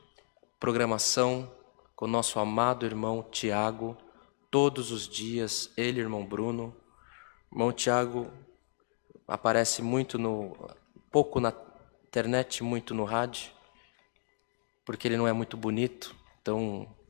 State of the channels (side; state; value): right; silent; digital silence